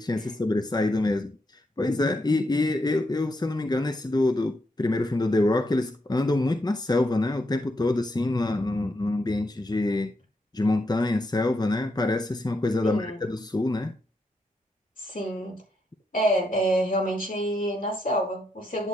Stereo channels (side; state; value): both; normal; correlation 0.81